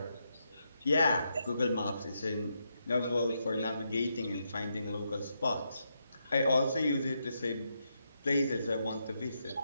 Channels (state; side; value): inverted; both; correlation -0.82